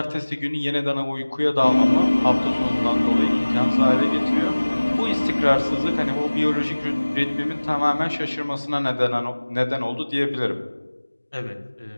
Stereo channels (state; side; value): inverted; both; correlation -1.00